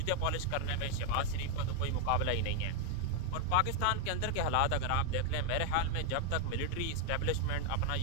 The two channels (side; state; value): both; different; correlation 0.01